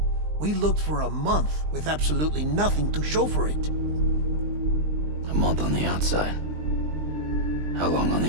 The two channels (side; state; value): left; late; 20 ms